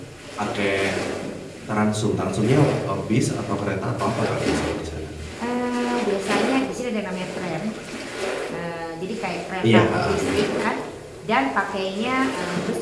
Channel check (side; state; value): both; identical; correlation 1.00